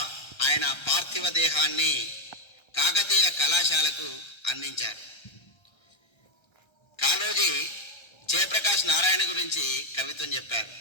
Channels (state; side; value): late; right; 1.3 ms